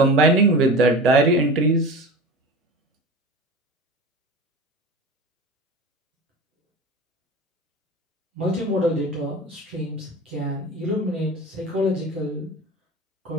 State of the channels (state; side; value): normal; both; correlation 0.32